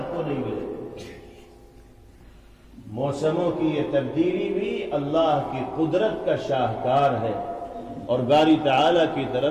کو نہیں ملیں گے۔ موسموں کی یہ تبدیلی بھی اللہ کی قدرت کا شاہکار ہے اور باری تعالیٰ کی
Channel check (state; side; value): identical; both; correlation 1.00